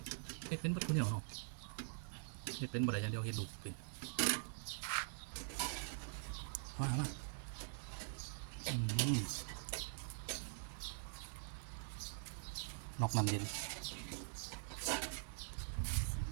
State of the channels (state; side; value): silent; left; digital silence